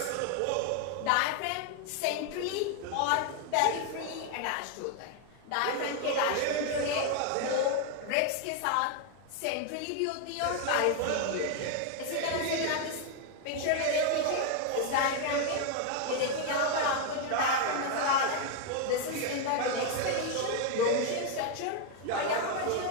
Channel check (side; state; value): both; different; correlation 0.00